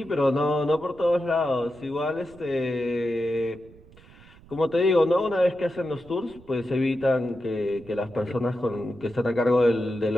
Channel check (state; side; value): noise; right; rumble, 23 dB below the sound